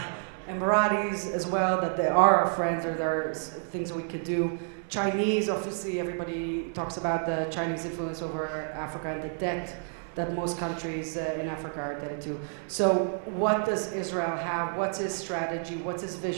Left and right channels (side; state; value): left; silent; 58 dB below the other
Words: Emiratis as well, that they are our friends, or there are things that we can do. Chinese, obviously, everybody talks about the Chinese influence over Africa and the debt that most countries in Africa are into. So what does Israel have? What's his strategy? What's his